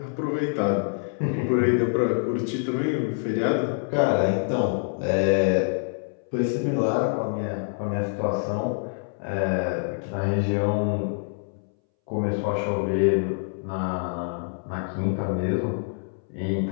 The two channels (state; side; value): silent; right; 61 dB below the other